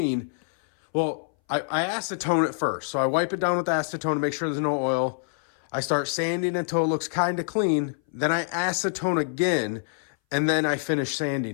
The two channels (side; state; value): right; silent; 59 dB below the other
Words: Well, I acetone it first. So I wipe it down with acetone to make sure there's no oil. I start sanding until it looks kind of clean. Then I acetone again, and then I finish